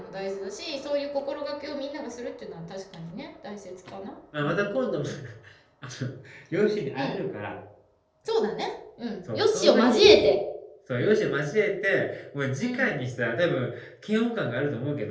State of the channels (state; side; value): identical; both; correlation 1.00